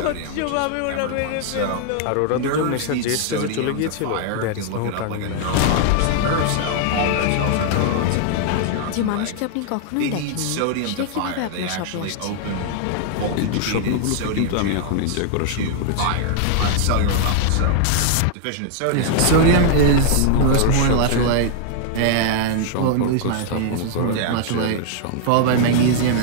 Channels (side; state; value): both; different; correlation 0.00